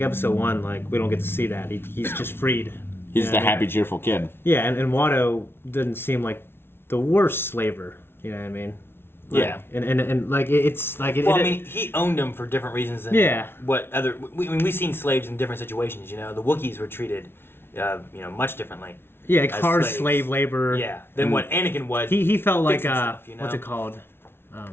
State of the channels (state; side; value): late; right; 0.11 ms